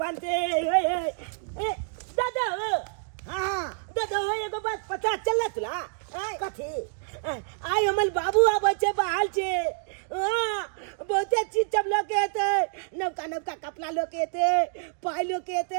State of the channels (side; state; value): left; silent; digital silence